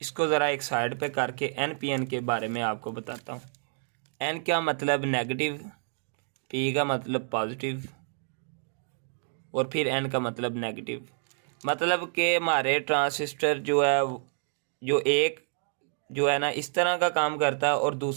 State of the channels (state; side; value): silent; left; digital silence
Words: इसको ज़रा एक साइड पे करके NPN के बारे में आपको बताता हूँ। N का मतलब नेगेटिव, P का मतलब पॉजिटिव और फिर N का मतलब नेगेटिव। मतलब कि हमारे ट्रांजिस्टर जो है, जो एक जो है ना इस तरह का काम करता है और